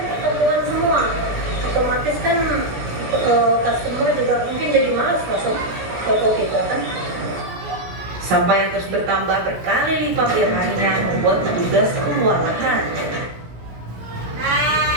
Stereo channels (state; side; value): late; left; 17 ms